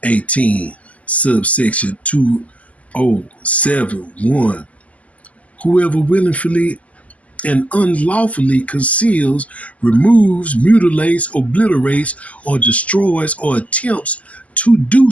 18 subsection 2071. Whoever willingly and unlawfully conceals, removes, mutilates, obliterates, or destroys, or attempts to do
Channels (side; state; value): right; late; 0.071 ms